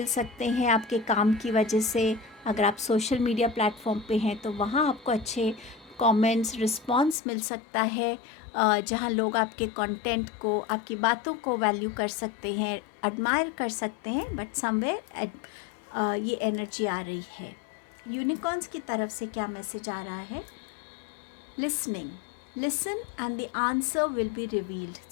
सकते हैं आपके काम की वजह से। अगर आप सोशल मीडिया प्लेटफॉर्म पे हैं तो वहाँ आपको अच्छे कमेंट्स, रिस्पांस मिल सकता है, जहाँ लोग आपके कंटेंट को, आपकी बातों को वैल्यू कर सकते हैं, एडमायर कर सकते हैं। बट समवेयर ये एनर्जी आ रही है। यूनिकॉर्न्स की तरफ से क्या मैसेज आ रहा है? Listening, listen and the answer will be revealed.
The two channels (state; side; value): drops out; right; at 7.2 s